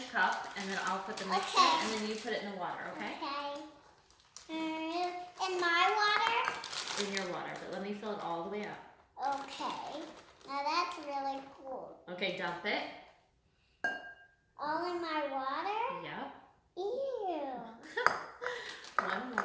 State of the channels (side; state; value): both; identical; correlation 1.00